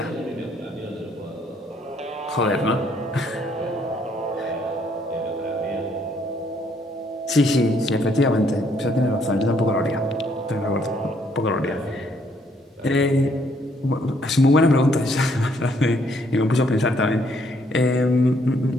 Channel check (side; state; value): both; normal; correlation 0.68